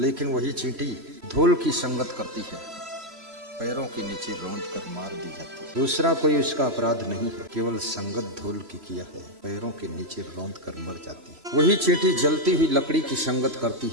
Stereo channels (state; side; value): late; left; 3.0 ms